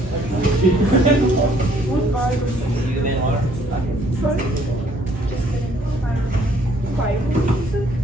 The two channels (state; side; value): normal; both; correlation 0.63